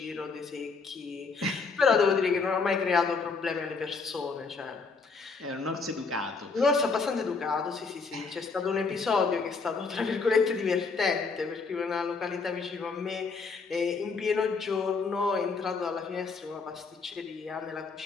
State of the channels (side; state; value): right; quieter; 4.6 dB